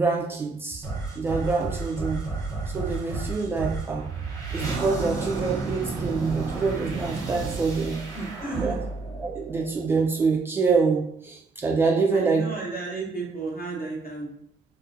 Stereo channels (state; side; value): quieter; left; 4.0 dB